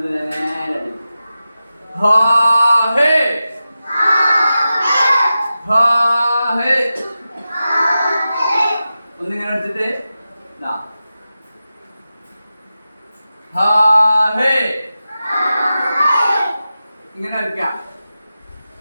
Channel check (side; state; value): both; inverted; correlation -0.93